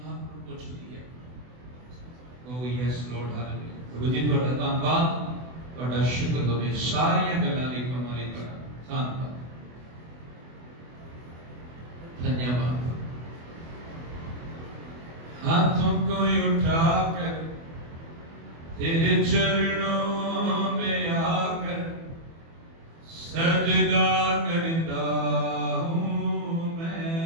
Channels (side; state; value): left; late; 24 ms